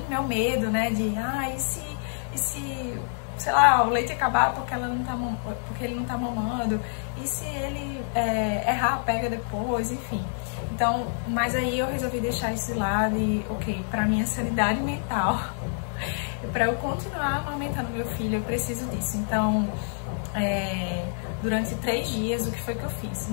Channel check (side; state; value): right; silent; digital silence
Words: meu medo, né, de, e se sei lá, o leite acabar porque ele não tá mamando, e se ele errar, pega depois, enfim. Então, mas aí eu resolvi deixar isso de lado e, ok, pra minha sanidade mental, pra eu continuar amamentando meu filho, eu preciso disso. Então, durante 3 dias, o que foi que eu fiz?